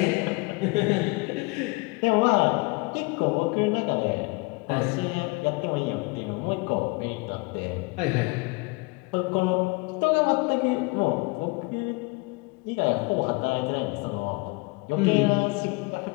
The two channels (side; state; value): right; quieter; 26.8 dB